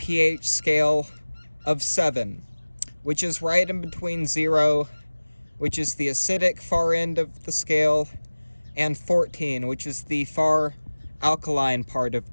scale of 7, which is right in between 0, which is the acidic far end of the scale, and 14, which is the far alkaline part of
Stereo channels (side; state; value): both; inverted; correlation -1.00